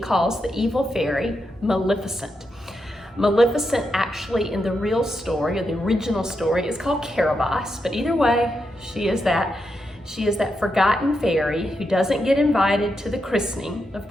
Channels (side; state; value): both; normal; correlation 0.85